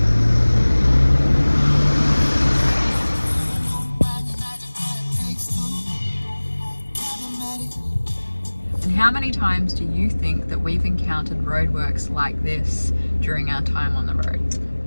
How many times do you think that we've encountered roadworks like this during our time on the road?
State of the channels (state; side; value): inverted; both; correlation -1.00